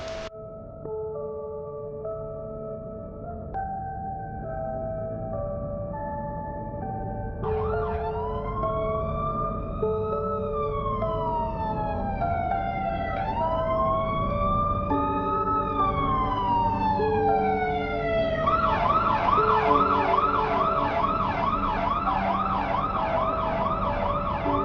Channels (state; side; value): identical; both; correlation 1.00